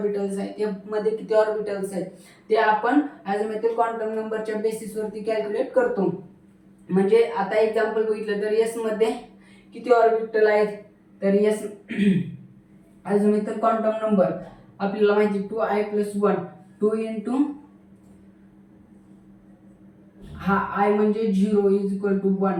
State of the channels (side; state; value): both; identical; correlation 1.00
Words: आहेत, एफ मध्ये किती ऑर्बिटल्स आहेत ते आपण अझिमुथल क्वांटम नंबरच्या बेसिसवरती कॅल्क्युलेट करतो. म्हणजे आता एक्झाम्पल बघितलं तर एस मध्ये किती ऑर्बिटल आहेत, तर एस अझिमुथल क्वांटम नंबर आपल्याला माहिती 2I+1. 2 इंटू हा आय म्हणजे 0 इज इक्वल टू 1